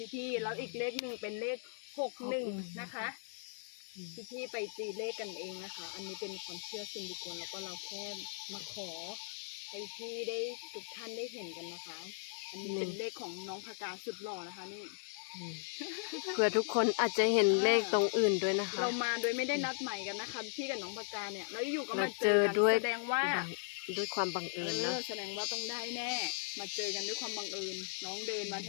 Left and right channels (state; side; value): silent; right; digital silence